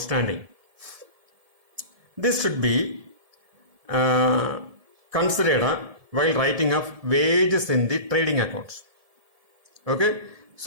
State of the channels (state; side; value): late; left; 1.7 ms